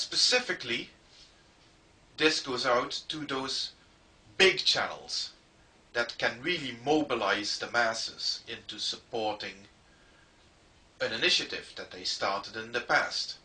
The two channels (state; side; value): identical; both; correlation 1.00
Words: this goes out to those big channels that can really mobilize the masses into supporting an initiative that they started in the past.